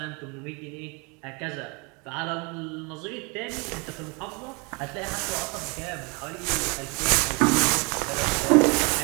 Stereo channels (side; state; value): left; quieter; 30.7 dB